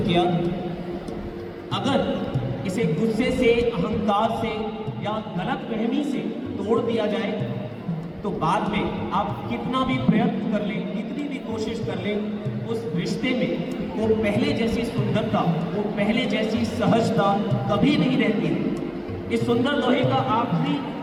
किया। अगर इसे गुस्से से, अहंकार से या गलतफहमी से तोड़ दिया जाए तो बाद में आप कितना भी प्रयत्न कर लें, कितनी भी कोशिश कर लें, उस रिश्ते में वो पहले जैसी सुंदरता, वो पहले जैसी सहजता कभी नहीं रहती। इस सुंदर दोहे का आखिरी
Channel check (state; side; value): identical; both; correlation 1.00